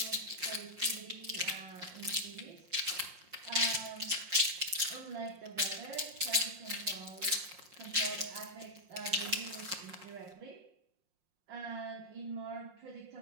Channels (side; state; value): left; late; 5.6 ms